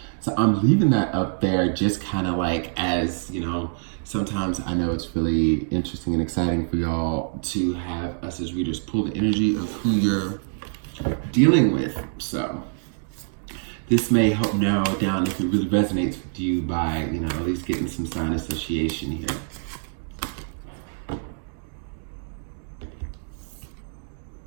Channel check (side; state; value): left; silent; digital silence